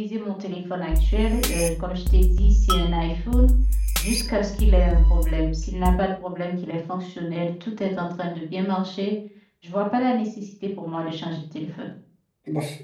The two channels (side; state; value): both; identical; correlation 1.00